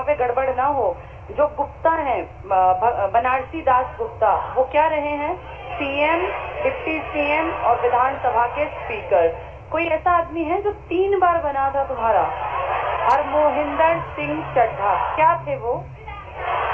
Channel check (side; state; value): both; identical; correlation 1.00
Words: पे गड़बड़ ना हो, जो गुप्ता हैं, बनारसी दास गुप्ता, वो क्या रहे हैं? CM, डिप्टी CM और विधानसभा के स्पीकर। कोई ऐसा आदमी है जो 3 बार बना था तुम्हारा? हरमोहिंदर सिंह चड्ढा, क्या थे वो?